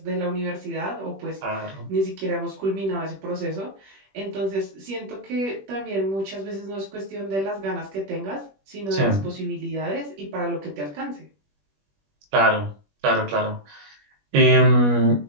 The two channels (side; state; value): left; late; 21 ms